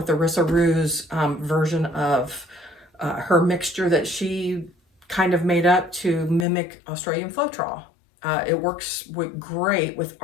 the Rissa Rue's version of her mixture that she kind of made up to mimic Australian Floetrol. It works great with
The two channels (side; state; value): right; drops out; at 6.5 s